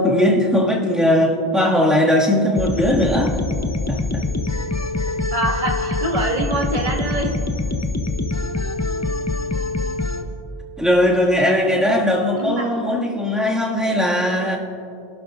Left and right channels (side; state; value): both; normal; correlation 0.43